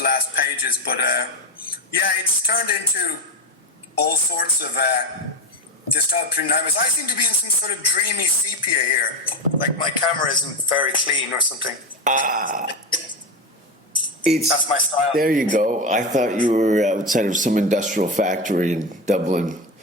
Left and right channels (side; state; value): both; normal; correlation 0.16